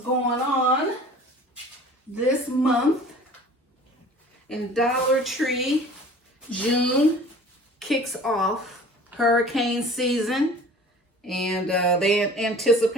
on this month. In Dollar Tree, June kicks off hurricane season, and they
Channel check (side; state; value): both; normal; correlation 0.45